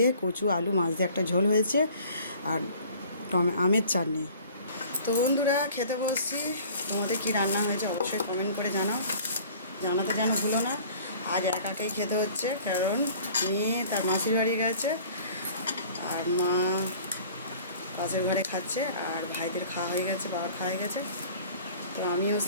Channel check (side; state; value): both; inverted; correlation -0.48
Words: কচু আলু মাছ দিয়ে একটা ঝোল হয়েছে, আর আমের চাটনি। তো বন্ধুরা খেতে বসছি। তোমাদের কী রান্না হয়েছে অবশ্যই কমেন্ট করে জানাতে যেন ভুলো না। আজ একাকেই খেতে হচ্ছে, কারণ মেয়ে তার মাসির বাড়ি গেছে, আর মা পাশের ঘরে খাচ্ছে, আর ভাইদের খাওয়া হয়ে গেছে, বাবার খাওয়া হয়ে গেছে। তো আমিও